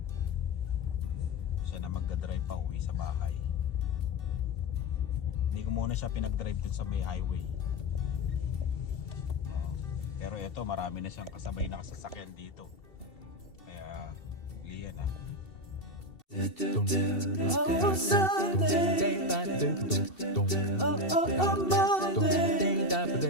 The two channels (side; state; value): right; late; 2.7 ms